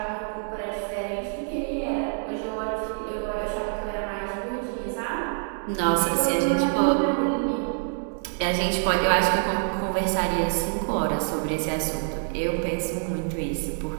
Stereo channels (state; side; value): silent; left; 61 dB below the other